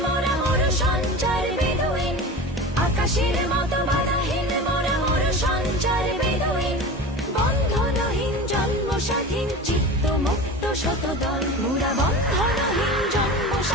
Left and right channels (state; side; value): normal; both; correlation 0.32